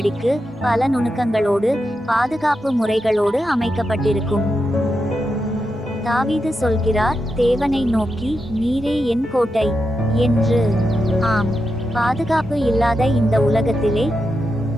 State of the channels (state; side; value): normal; both; correlation 0.87